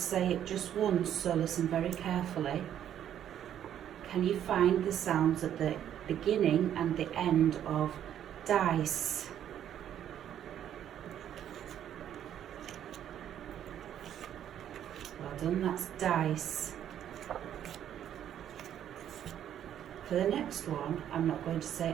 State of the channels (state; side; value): quieter; left; 10.3 dB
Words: say it just once, so listen very carefully. Can you find the sounds at the beginning and the end of dice? Well done, that's dice. For the next one, I'm not going to